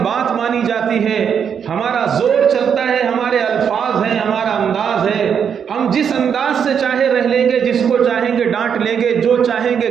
بات مانی جاتی ہے، ہمارا زور چلتا ہے، ہمارے الفاظ ہیں، ہمارا انداز ہے، ہم جس انداز سے چاہے رہ لیں گے، جس کو چاہیں گے ڈانٹ لیں گے، جو چاہیں گے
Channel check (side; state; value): left; quieter; 7.5 dB